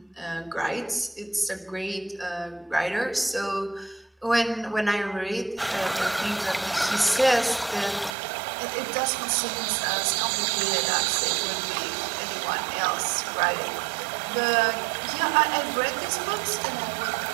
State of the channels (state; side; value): drops out; left; at 8.2 s